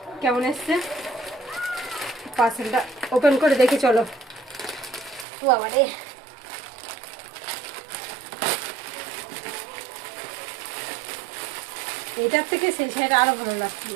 কেমন এসছে। পার্সেলটা ওপেন করে দেখি, চলো। ও বাবা রে, এটার থেকে সেই শাড়িটা আরো ভালো লাগছিল,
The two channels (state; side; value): drops out; left; at 5.2 s